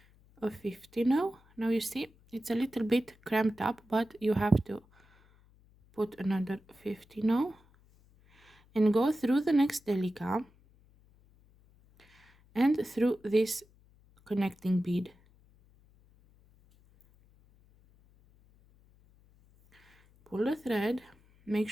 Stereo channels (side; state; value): left; noise; hum, 30 dB below the sound